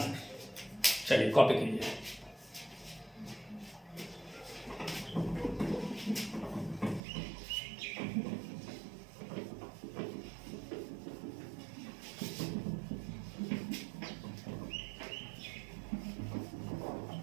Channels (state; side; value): drops out; left; at 7.0 s